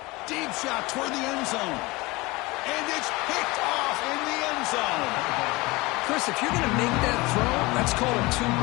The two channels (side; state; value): right; quieter; 22.7 dB